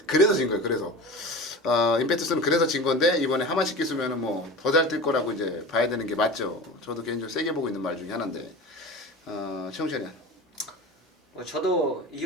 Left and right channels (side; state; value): both; normal; correlation 0.33